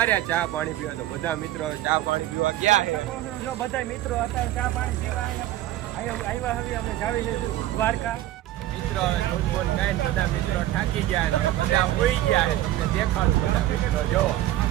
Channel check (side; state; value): left; quieter; 14.4 dB